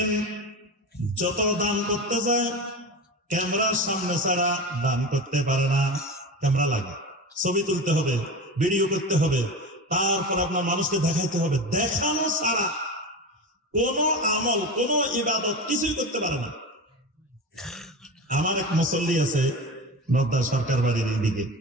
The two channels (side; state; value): both; normal; correlation 0.26